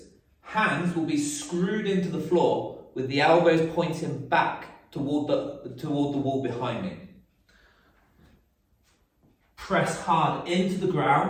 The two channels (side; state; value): both; identical; correlation 1.00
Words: Hands will be screwed into the floor with the elbows pointing back toward the wall behind me. Press hard into the